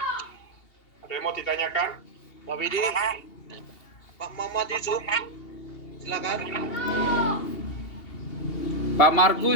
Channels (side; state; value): right; late; 2.8 ms